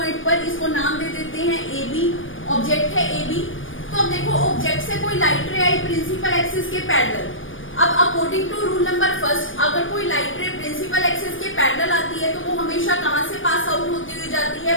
पर, इसको नाम दे देते हैं ए बी, ऑब्जेक्ट है ए बी। तो अब देखो ऑब्जेक्ट से कोई लाइट रे आई प्रिंसिपल एक्सिस के पैरेलल। अब according to rule number first, अगर कोई लाइट रे प्रिंसिपल एक्सिस के पैरेलल आती है तो वो हमेशा कहां से पास आउट होती हुई जाती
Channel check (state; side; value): late; right; 0.57 ms